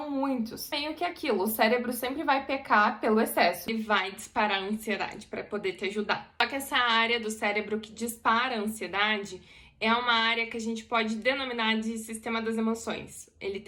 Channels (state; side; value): identical; both; correlation 1.00